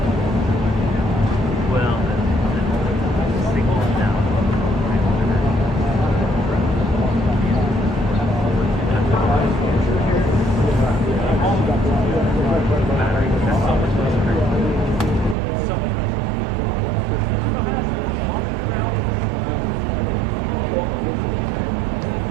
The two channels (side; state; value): left; drops out; at 15.4 s